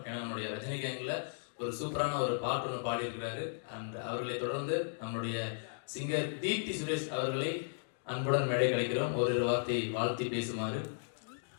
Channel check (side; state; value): right; silent; digital silence